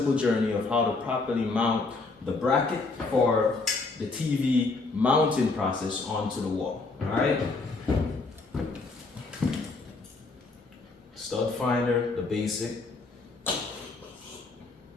journey of how to properly mount the bracket for the TV mounting process onto the wall. Alright? Stud finder, the basic.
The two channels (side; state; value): right; quieter; 3.7 dB